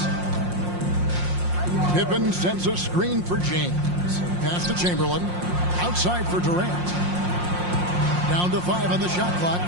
Pippen sends a screen for James. Pass to Chamberlain. Outside for Durant. Down to 5 on the shot clock.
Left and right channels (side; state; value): left; late; 5.6 ms